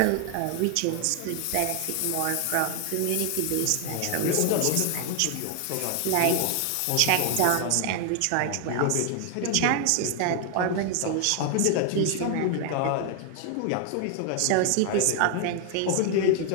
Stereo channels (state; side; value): different; both; correlation 0.00